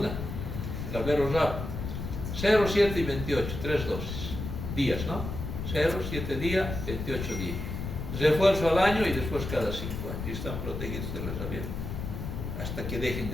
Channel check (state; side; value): noise; left; rumble, 5 dB below the sound